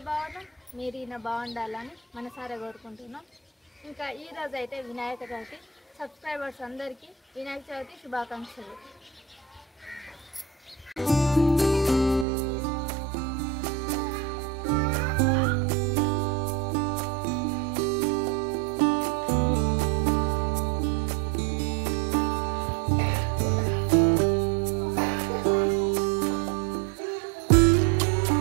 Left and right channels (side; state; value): left; drops out; at 12.2 s